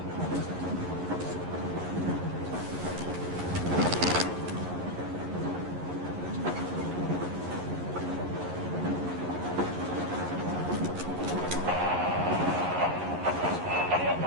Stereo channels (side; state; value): left; late; 11 ms